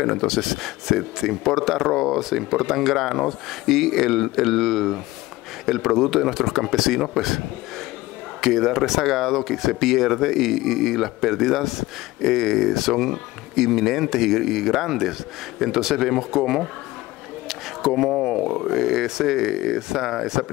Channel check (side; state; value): right; quieter; 18.7 dB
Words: Entonces se importa arroz, se importan granos y el producto de nuestros campesinos pues queda rezagado, que se pierde y las pérdidas son inminentes y grandes. Entonces vemos cómo esa